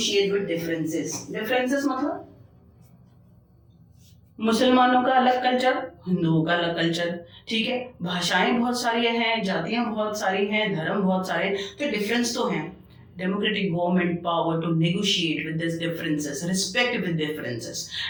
with differences. Differences मतलब मुसलमानों का अलग कल्चर, हिंदुओं का अलग कल्चर. ठीक है, भाषाएं बहुत सारी हैं, जातियां बहुत सारी हैं, धर्म बहुत सारे, तो डिफरेंस तो हैं. Democratic government power to negotiate with these differences, respect with differences.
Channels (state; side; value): identical; both; correlation 1.00